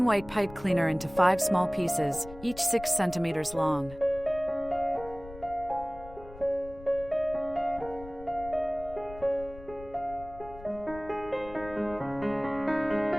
white pipe cleaner into 5 small pieces, each 6 centimeters long.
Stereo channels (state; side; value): noise; left; rumble, 17 dB below the sound